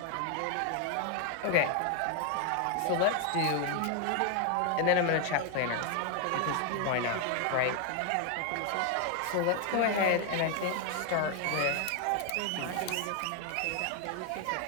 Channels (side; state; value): both; different; correlation 0.01